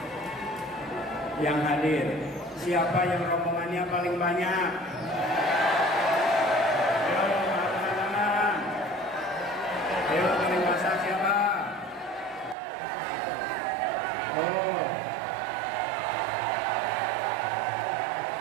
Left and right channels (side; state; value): left; drops out; at 12.6 s